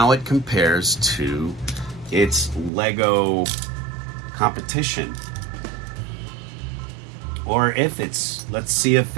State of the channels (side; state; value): left; drops out; at 2.7 s